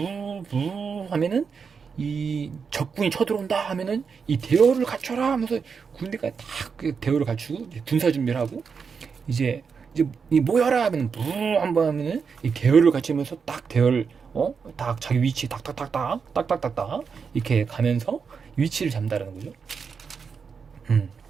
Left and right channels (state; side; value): quieter; left; 5.8 dB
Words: 하면은 이 적군이 쳐들어온다 하면은 이 대열을 갖춰라 하면서 군대가 딱 대열을 갖추고 군사 준비를 하고 이제 이 모여라 하면 부 한번 하면은 이 대열을 갖추면서 딱 대열 딱 자기 위치 딱딱딱딱 이렇게 가면서 위치를 잡는다는 거죠.